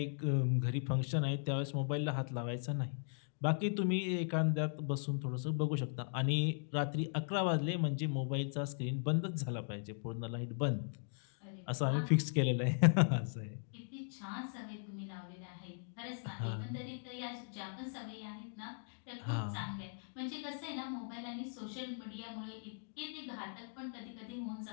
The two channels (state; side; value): silent; right; digital silence